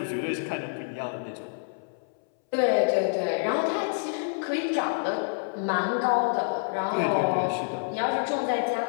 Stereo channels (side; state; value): right; silent; 60 dB below the other